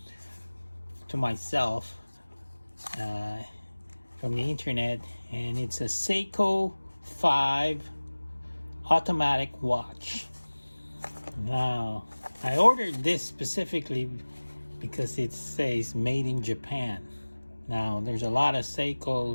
to myself from the internet, and it's a Seiko 5 automatic watch. Now, I ordered this specifically because it says made in Japan. Now, there's a lot of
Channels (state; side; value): inverted; both; correlation -1.00